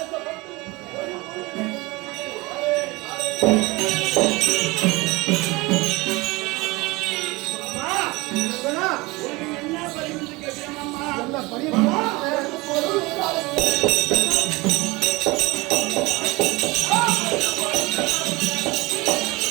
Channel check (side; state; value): left; quieter; 22.5 dB